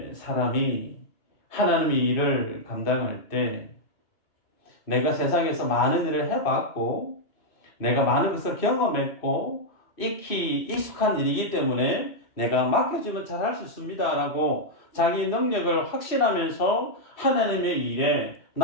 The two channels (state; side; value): late; right; 3.2 ms